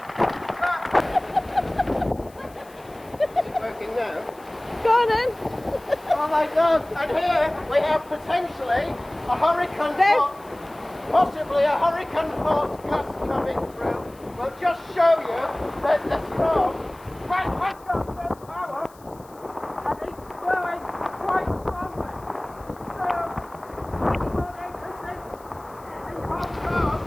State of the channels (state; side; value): noise; left; hiss, 26 dB below the sound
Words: Working now. Go on then. Oh my God! And here we have potentially a hurricane force, possibly a hurricane force gust coming through. We'll just show you that the storm has got some power and it's blowing quite strongly. So, what I can say in Hong Kong,